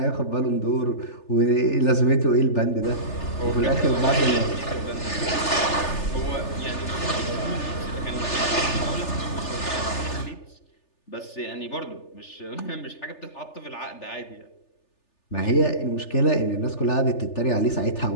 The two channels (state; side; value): late; right; 3.4 ms